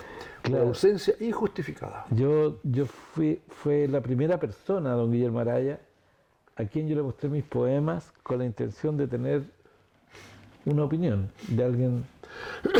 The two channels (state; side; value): identical; both; correlation 1.00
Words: Claro. Por ausencia injustificada. Fue la primera persona, don Guillermo Araya, a quien yo le mostré mis poemas con la intención de tener una opinión de alguien